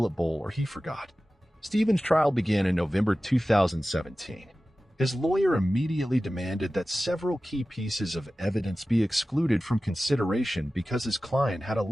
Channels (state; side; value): normal; both; correlation 0.96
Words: bowl or he forgot. Stephen's trial began in November 2017. His lawyer immediately demanded that several key pieces of evidence be excluded from consideration because his client had